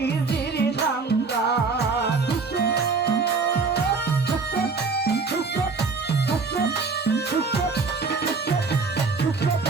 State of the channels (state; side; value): quieter; left; 4.5 dB